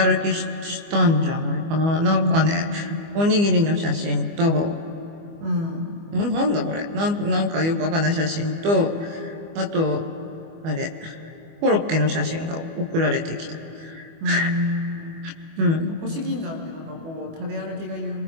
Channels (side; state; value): left; late; 25 ms